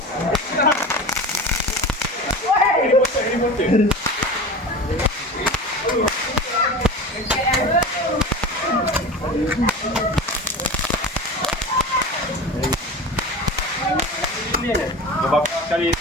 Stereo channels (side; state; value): both; normal; correlation 0.32